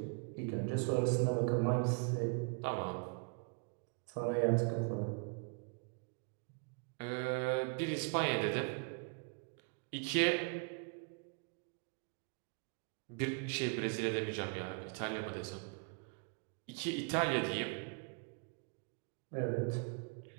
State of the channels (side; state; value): left; quieter; 38.3 dB